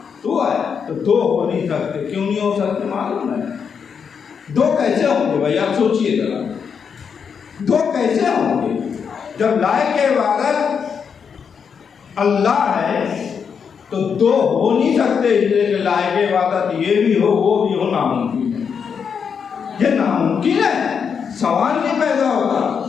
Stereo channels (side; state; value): right; quieter; 6.6 dB